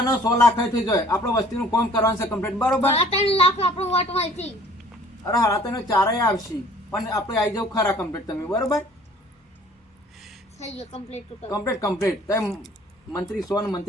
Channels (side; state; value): both; normal; correlation 0.53